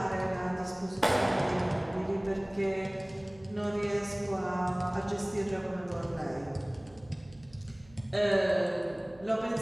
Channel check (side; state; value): right; noise; hum, 25 dB below the sound